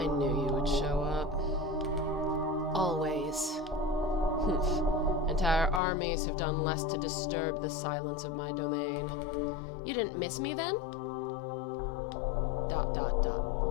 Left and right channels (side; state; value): right; drops out; at 5.8 s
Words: knew you would show up. Always. Humph. Entire armies have done less to disturb the silence of my domain. You didn't miss me then? ...